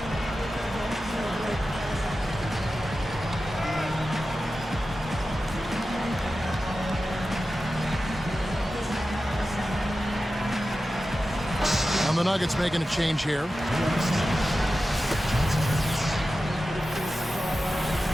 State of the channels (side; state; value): both; normal; correlation 0.93